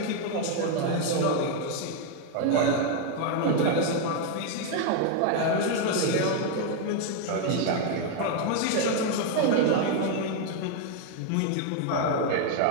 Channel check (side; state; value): both; different; correlation 0.01